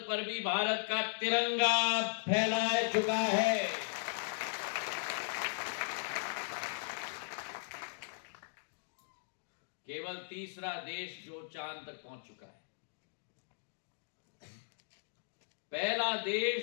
पर भी भारत का तिरंगा फहराया चुका है, केवल तीसरा देश जो चांद तक पहुंच चुका है, पहला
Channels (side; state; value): right; silent; digital silence